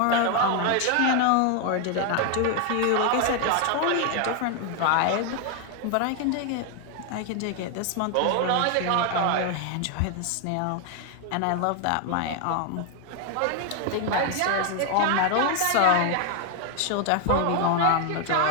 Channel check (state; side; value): different; both; correlation 0.01